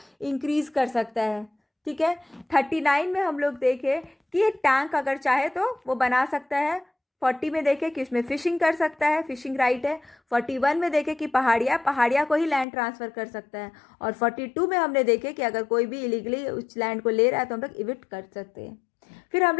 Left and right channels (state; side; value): drops out; right; at 12.7 s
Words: इंक्रीज कर सकता है। ठीक है, 39 में हम लोग देखें कि टैंक अगर चाहे तो वो बना सकता है। 40 में देखें कि उसमें फिशिंग कर सकता है, फिशिंग राइट है। 41 में देखें कि पहाड़िया को ही लैंड ट्रांसफ़र कर सकता है। और 42 में हमने देखे कि अगर कोई भी इलीगली उस लैंड को ले रहा है तो हम लोग इविक्ट कर सकते हैं। फिर हम